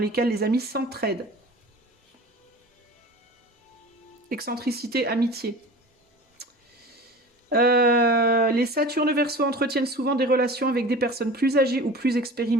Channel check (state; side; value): normal; both; correlation 0.38